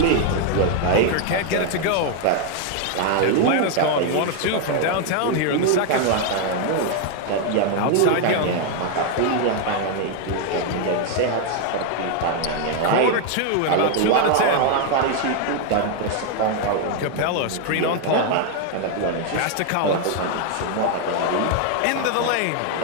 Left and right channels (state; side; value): different; both; correlation 0.00